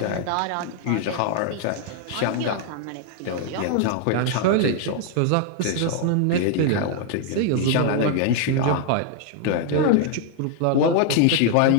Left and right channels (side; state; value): both; different; correlation 0.00